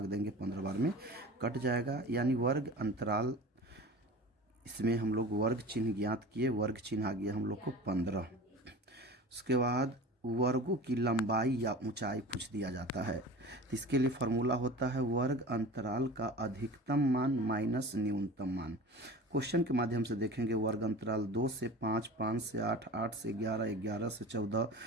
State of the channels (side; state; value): both; normal; correlation 0.36